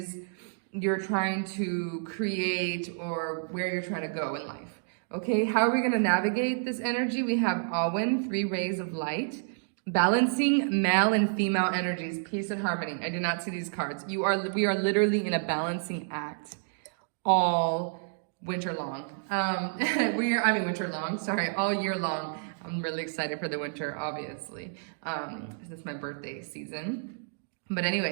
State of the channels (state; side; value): silent; left; digital silence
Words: you're trying to create or where you're trying to go in life. Okay, how are we going to navigate this energy? We have Awen, 3 rays of light, balancing male and female energies, peace and harmony. I did not see these cards. We are literally in a balancing act all winter long. Winter long, sorry, all year long. I'm really excited for the winter, obviously. This is my birthday season. But